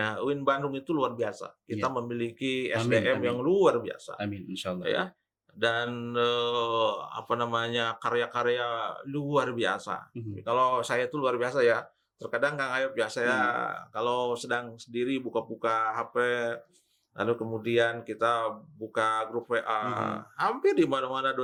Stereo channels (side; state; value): both; identical; correlation 1.00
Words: UIN Bandung itu luar biasa. Kita memiliki SDM yang luar biasa. Amin, insyaallah. Ya. Dan karya-karya luar biasa. Kalau saya itu luar biasa ya. Terkadang Kang Ayub ya, saya kalau sedang sendiri buka-buka HP, lalu kemudian kita buka grup WA, hampir di mana-mana